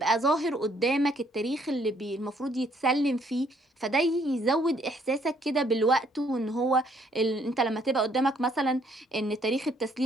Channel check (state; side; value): normal; both; correlation 0.66